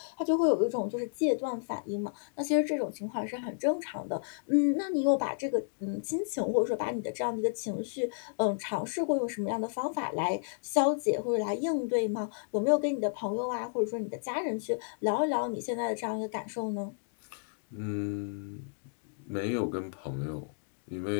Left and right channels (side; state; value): right; silent; digital silence